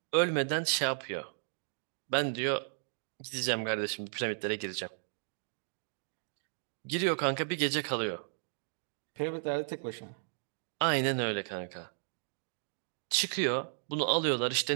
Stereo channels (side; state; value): left; silent; digital silence